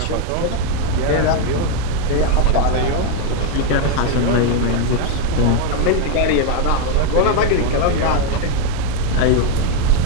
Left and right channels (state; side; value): different; both; correlation 0.00